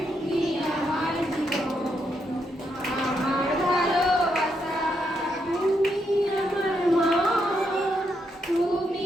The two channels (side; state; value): both; normal; correlation 0.79